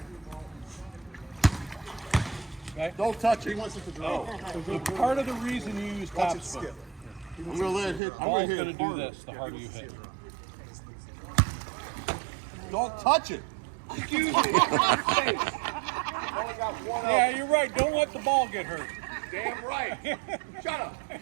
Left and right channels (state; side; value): drops out; left; at 8.0 s